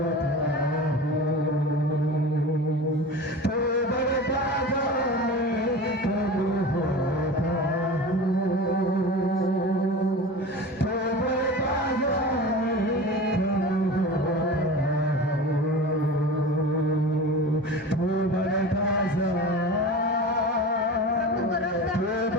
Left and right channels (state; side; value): normal; both; correlation 0.33